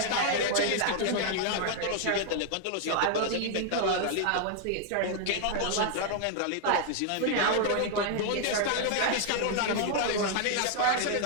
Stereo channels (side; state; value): both; different; correlation 0.00